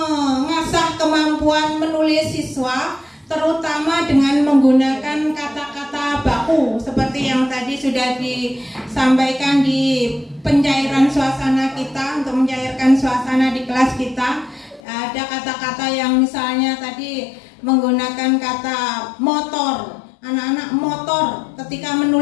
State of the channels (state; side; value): drops out; right; at 14.8 s